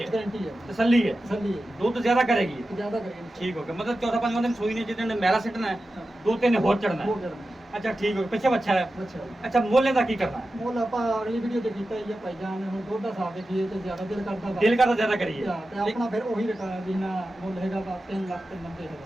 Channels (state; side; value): normal; both; correlation 0.93